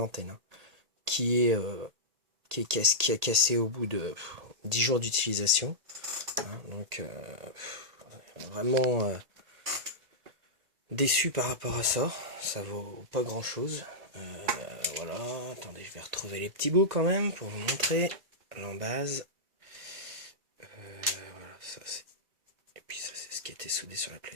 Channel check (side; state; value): left; late; 2.0 ms